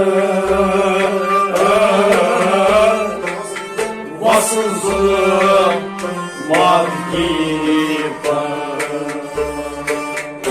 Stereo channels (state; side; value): identical; both; correlation 1.00